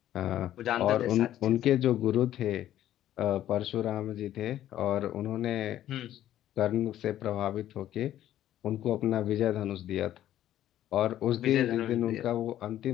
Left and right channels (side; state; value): right; quieter; 12.4 dB